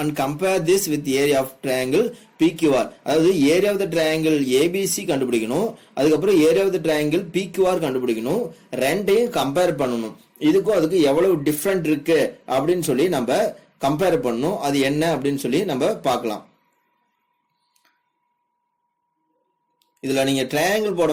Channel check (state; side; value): identical; both; correlation 1.00